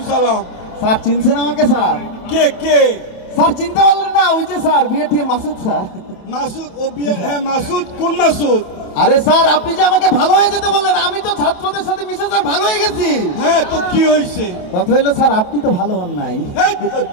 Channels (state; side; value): late; right; 27 ms